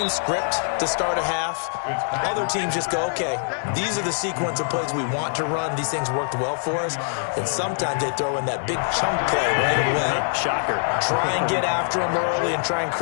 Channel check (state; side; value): silent; right; digital silence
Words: script to start a half. Other teams just go, okay, these are the sequence of plays we want to run. These things worked well for us. And sometimes they throw in that big chunk play right away. Shocker. Try and get after them early and try and